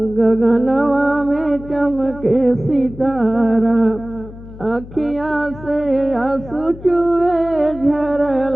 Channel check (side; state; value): left; noise; hum, 16 dB below the sound